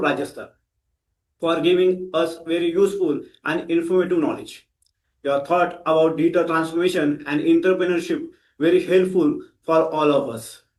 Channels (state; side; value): identical; both; correlation 1.00